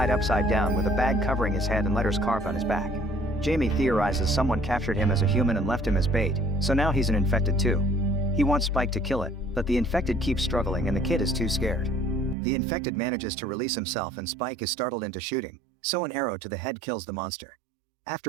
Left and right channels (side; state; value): left; drops out; at 12.4 s